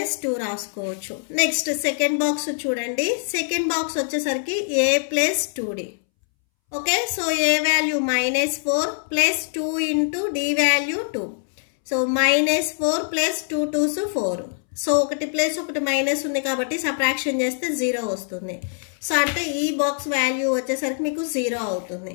రాసుకోవచ్చు. నెక్స్ట్ సెకండ్ బాక్స్ చూడండి. సెకండ్ బాక్స్ వచ్చేసరికి a plus 2d. Okay, so a value -4 plus 2 × d value 2. So -4 plus 2 2s 4. So ఒకటి ప్లస్ ఒకటి మైనస్ ఉంది కాబట్టి సబ్ట్రాక్షన్ చేస్తే 0 వస్తుంది. సో అంటే ఈ బాక్స్ వాల్యూ వచ్చేసరికి మీకు 0 అవుతుంది.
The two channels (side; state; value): right; silent; 63 dB below the other